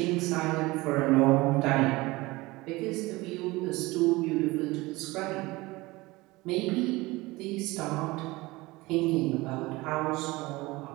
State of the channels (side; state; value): left; quieter; 21.3 dB